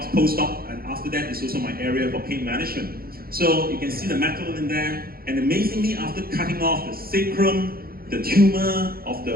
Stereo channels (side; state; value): left; late; 0.44 ms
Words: post-op, and after that is also my area for pain management. So you can see the metal in there, and amazingly, after cutting off the sacrum, the tumor of